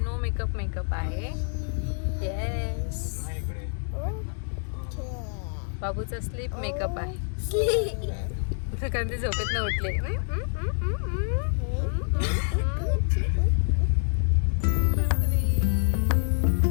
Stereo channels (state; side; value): silent; right; 60 dB below the other